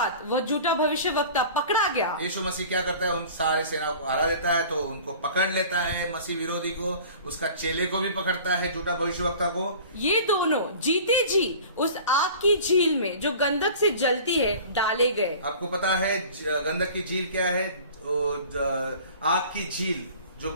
वह झूठा भविष्यवक्ता पकड़ा गया। यीशु मसीह क्या करता है? उन सारी सेनाओं को हरा देता है, तो उनको पकड़ लेता है, मसीह विरोधी को, उसका चेले को भी पकड़ता है, झूठा भविष्यवक्ता को। ये दोनों जीते जी उस आग की झील में जो गंधक से जलती है डाले गए। आपको पता है गंधक की झील क्या है? आग की झील जो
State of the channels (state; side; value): inverted; both; correlation -0.43